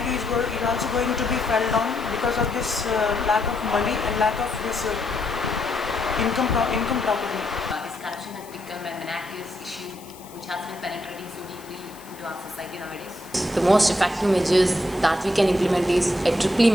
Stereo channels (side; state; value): left; noise; hiss, 21 dB below the sound